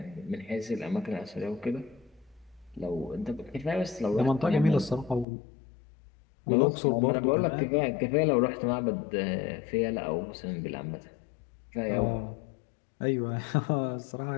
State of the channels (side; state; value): right; drops out; at 5.2 s